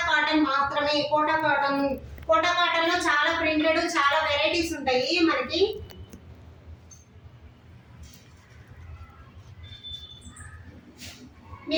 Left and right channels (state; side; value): identical; both; correlation 1.00